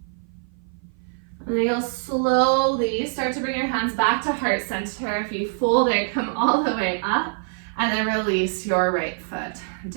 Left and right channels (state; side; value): silent; left; 55 dB below the other